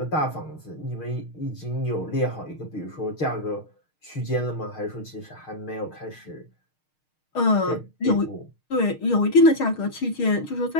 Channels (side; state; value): right; late; 6.5 ms